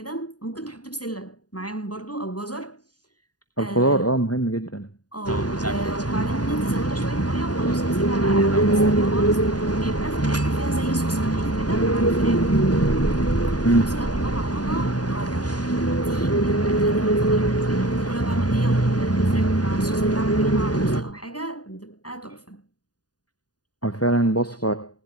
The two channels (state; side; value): late; right; 0.69 ms